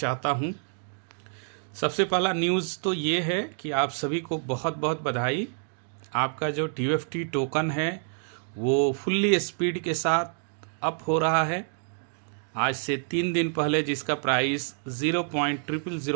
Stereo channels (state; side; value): silent; left; 60 dB below the other